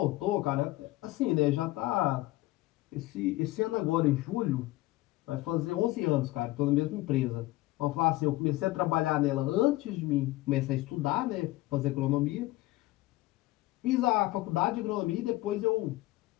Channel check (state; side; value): quieter; right; 18.3 dB